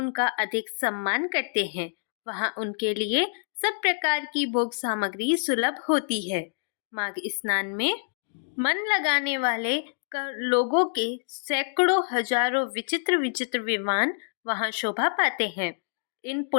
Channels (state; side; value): silent; right; digital silence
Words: अधिक सम्मान करते हैं। वहां उनके लिए सब प्रकार की भोग सामग्री सुलभ होती है। माघ स्नान में मन लगाने वाले लोगों के सैकड़ों हजारों विचित्र विचित्र विमान वहां शोभा पाते हैं। इन